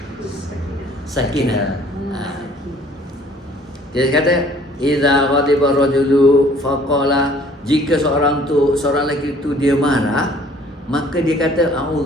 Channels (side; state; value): both; normal; correlation 0.56